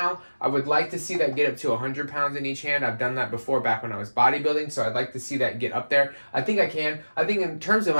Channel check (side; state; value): both; inverted; correlation -1.00